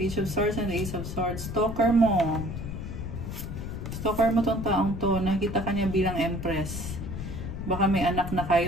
of Swords and Ace of Swords. Stalker mo. Stalker mo tong taong to. Nakita ka niya bilang Empress. Baka may anak na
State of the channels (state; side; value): noise; left; rumble, 6 dB below the sound